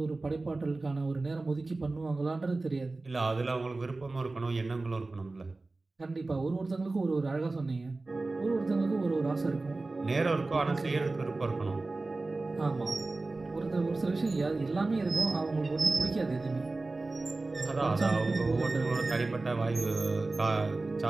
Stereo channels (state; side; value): quieter; left; 3.3 dB